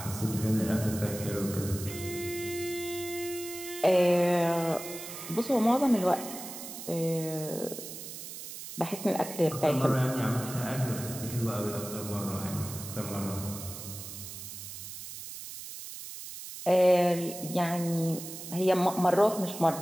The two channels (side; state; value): right; noise; hiss, 10 dB below the sound